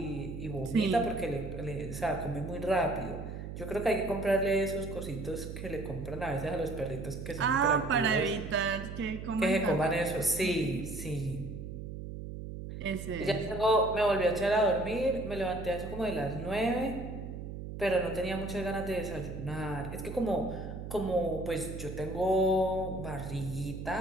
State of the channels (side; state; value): right; noise; hum, 8 dB below the sound